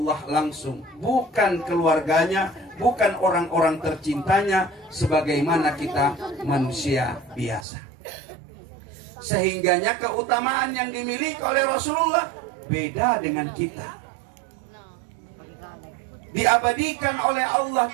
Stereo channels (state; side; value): drops out; left; at 7.7 s